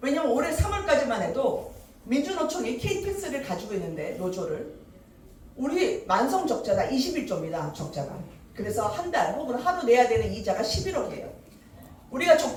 왜냐면 올해 3월까지만 해도 민주노총이 KTX를 가지고 있는데 노조를 우리 만성 적자가 21조입니다. 적자가. 그래서 한 달 혹은 하루 내야 되는 이자가 11억이에요. 우리가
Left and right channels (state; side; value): identical; both; correlation 1.00